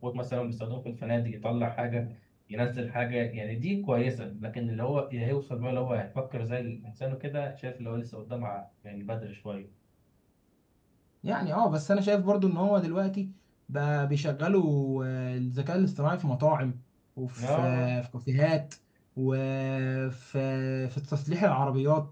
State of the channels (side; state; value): both; identical; correlation 1.00